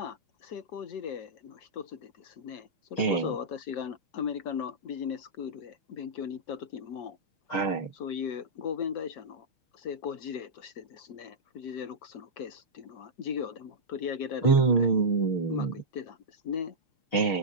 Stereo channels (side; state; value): right; late; 6.4 ms